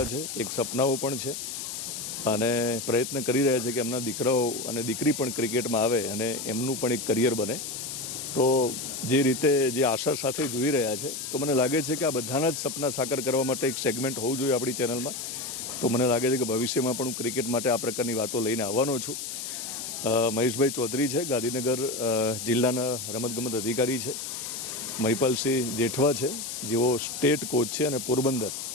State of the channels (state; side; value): noise; left; hiss, 6 dB below the sound